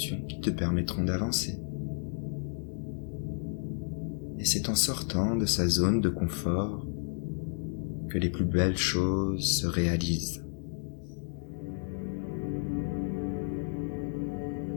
qui te permettront d'avancer. Et c'est en sortant de sa zone de confort que les plus belles choses se réalisent.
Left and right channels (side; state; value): right; silent; digital silence